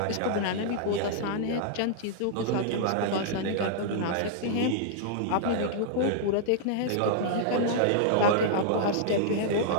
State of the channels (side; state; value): both; different; correlation -0.01